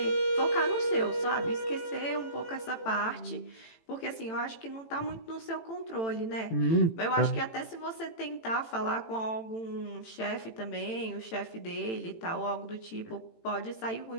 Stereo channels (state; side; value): late; right; 18 ms